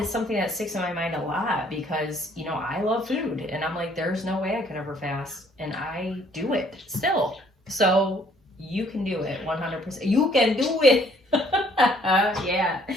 something that sticks in my mind a lot, because I love food, and I'm like, there's no way I could ever fast, and I do it still. So you can do it 100%. You can do it. Yeah.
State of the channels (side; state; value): both; normal; correlation 0.62